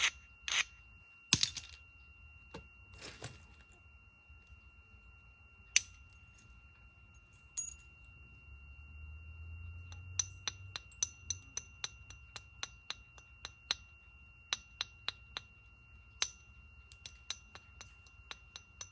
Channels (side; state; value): both; identical; correlation 1.00